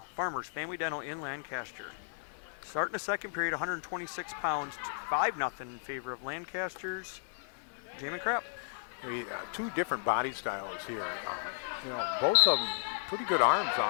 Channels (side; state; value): right; silent; digital silence